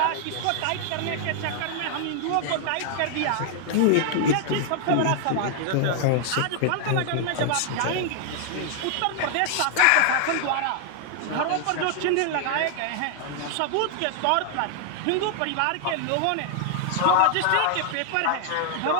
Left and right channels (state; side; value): different; both; correlation 0.00